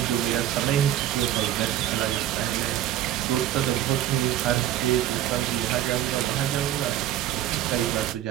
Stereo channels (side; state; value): left; quieter; 12.3 dB